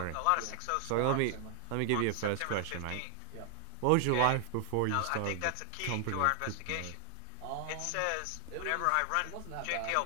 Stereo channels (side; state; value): both; different; correlation 0.00